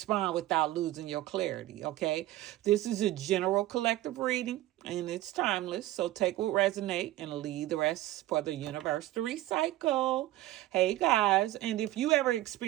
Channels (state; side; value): quieter; left; 15.5 dB